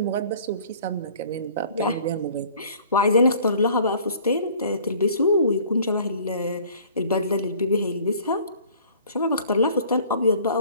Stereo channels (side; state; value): both; inverted; correlation -0.52